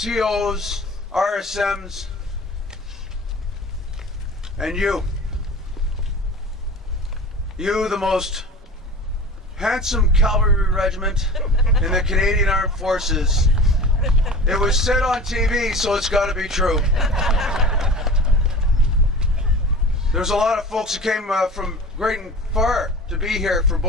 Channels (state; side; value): normal; both; correlation 0.37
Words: RSMs, and you, the most handsome cavalry regiment in the Canadian Armed Forces. It was said on TV, so it's got to be true. There's a lot of folks who came from great and far to be here for